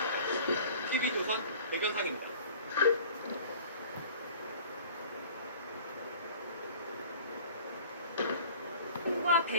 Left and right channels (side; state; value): both; inverted; correlation -0.46